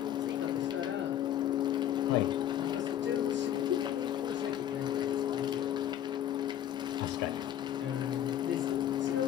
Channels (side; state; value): right; quieter; 10.9 dB